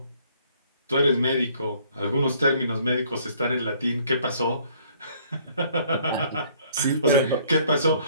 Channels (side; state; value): both; inverted; correlation -0.61